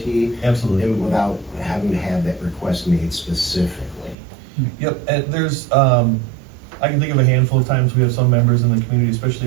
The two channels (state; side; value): drops out; left; at 4.2 s